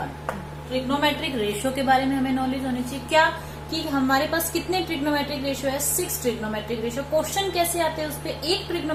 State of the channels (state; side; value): identical; both; correlation 1.00